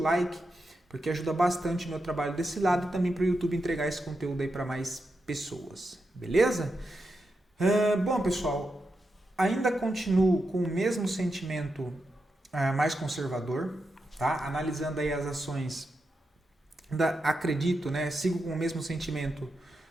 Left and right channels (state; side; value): normal; both; correlation 0.87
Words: porque ajuda bastante o meu trabalho desse lado e também para o YouTube entregar esse conteúdo aí para mais pessoas, beleza? Bom pessoal, ainda continuo com o mesmo sentimento mais conservador, tá? Analisando aí as ações, ainda acredito, né? Sigo com o mesmo sentimento